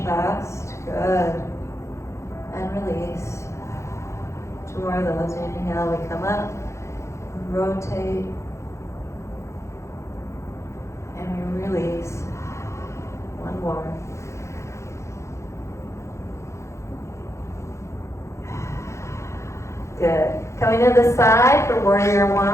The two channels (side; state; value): right; late; 0.14 ms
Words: Good. And release. Two more of those. Inhale, we come up, rotate, and we release. One more. Good. Coming to the side for warrior